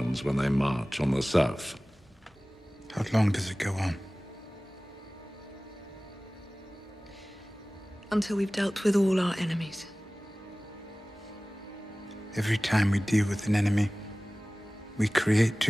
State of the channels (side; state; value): both; normal; correlation 0.98